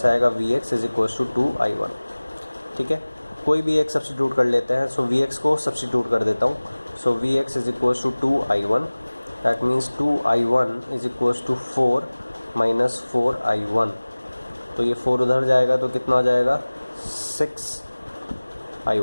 आएगा Vx is equals to 2 I1, ठीक है। कोई भी एक सब्स्टिट्यूट कर लेते हैं, सो Vx को सब्स्टिट्यूट कर देता हूँ। So Vx is equals to 2 I1, that means 2 I1 is equals to 4 minus 4 I1, तो ये 4 उधर जाएगा तो कितना हो जाएगा 6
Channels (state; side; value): inverted; both; correlation -1.00